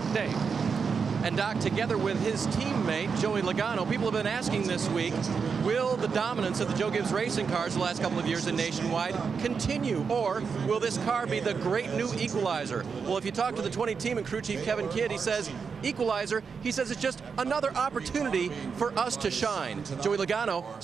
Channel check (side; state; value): left; quieter; 5.7 dB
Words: Dave. And Doc, together with his teammate, Joey Logano, people have been asking this week, will the dominance of the Joe Gibbs racing cars the last couple of years in Nationwide continue, or will this car be the great new equalizer? Well, if you talk to the 20 team and crew chief Kevin Kidd, he says equalizer. He says it's just another opportunity for us to shine. Joey Logano